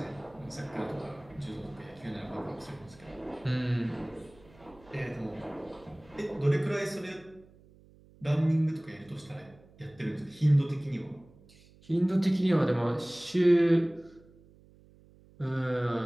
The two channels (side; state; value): right; noise; hum, 26 dB below the sound